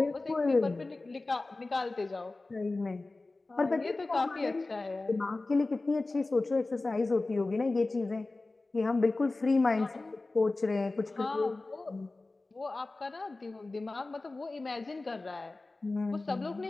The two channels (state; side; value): quieter; right; 3.2 dB